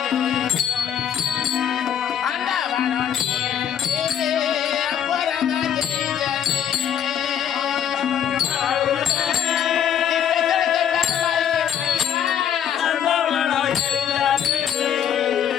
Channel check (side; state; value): right; quieter; 9.1 dB